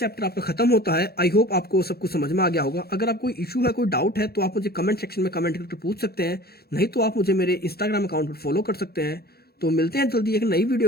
आपका खत्म होता है। आई होप आपको सब कुछ समझ में आ गया होगा। अगर आप कोई इशू है, कोई डाउट है तो आप मुझे कमेंट सेक्शन में कमेंट करके पूछ सकते हैं, नहीं तो आप मुझे मेरे इंस्टाग्राम अकाउंट पर फॉलो कर सकते हैं। तो मिलते हैं जल्दी एक नई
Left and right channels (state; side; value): late; right; 0.46 ms